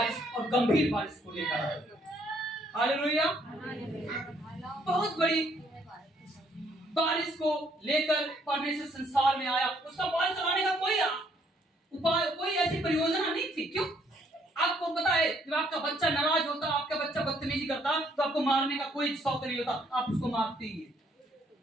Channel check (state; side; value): normal; both; correlation 0.67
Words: और गंभीर बारिश को लेकर आए। हालेलुया। बहुत बड़ी बारिश को लेकर परमेश्वर संसार में आया। उसका बारिश चलाने का कोई उपाय, कोई ऐसी परियोजना नहीं थी। क्यों? आपको पता है, जब आपका बच्चा नाराज होता, आपका बच्चा बदतमीजी करता, तो आपको मारने का कोई शौक नहीं होता, आप उसको मारते ही हैं।